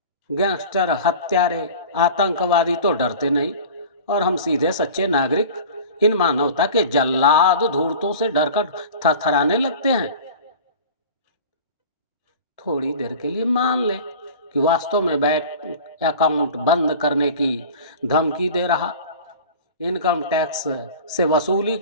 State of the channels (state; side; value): inverted; both; correlation -0.38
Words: गैंगस्टर, हत्यारे, आतंकवादी तो डरते नहीं, और हम सीधे सच्चे नागरिक इन मानवता के जल्लाद धूर्तों से डरकर थरथराने लगते हैं। थोड़ी देर के लिए मान ले कि वास्तव में बैंक अकाउंट बंद करने की धमकी दे रहा, इनकम टैक्स से वसूली